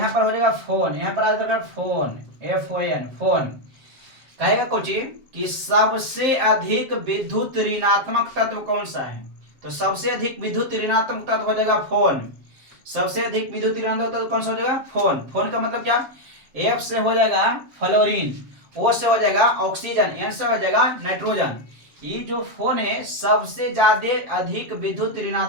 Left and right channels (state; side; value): late; left; 7.5 ms